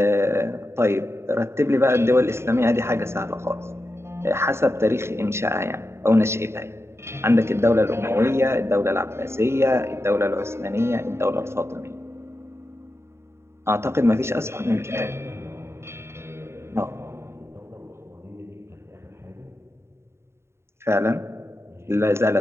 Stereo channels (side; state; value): left; late; 0.13 ms